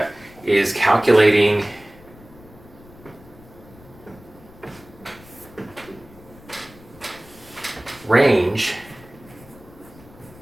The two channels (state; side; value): noise; left; rumble, 22 dB below the sound